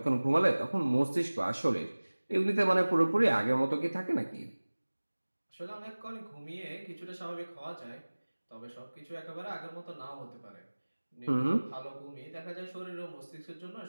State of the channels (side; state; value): both; inverted; correlation -1.00